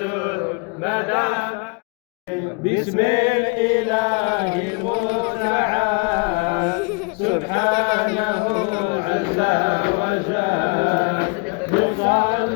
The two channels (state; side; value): quieter; right; 33.2 dB